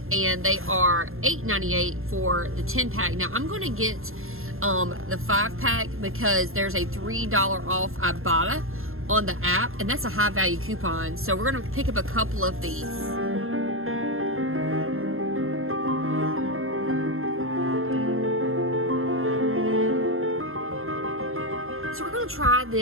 and they are $8.98 for the 10-pack. Now, I'm going to get the 5-pack because there's a $3 off Ibotta on the app, and that's a high-value coupon. So we're going to pick up a couple of these. So we're going to try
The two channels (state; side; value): late; left; 0.61 ms